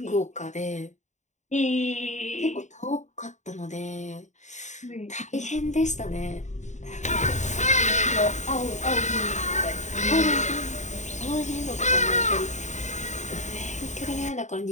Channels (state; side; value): late; right; 0.34 ms